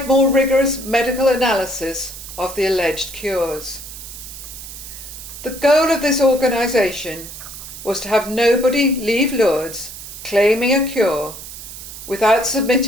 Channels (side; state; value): right; noise; hiss, 12 dB below the sound